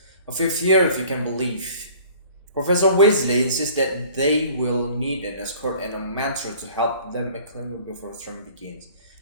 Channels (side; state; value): both; inverted; correlation -0.50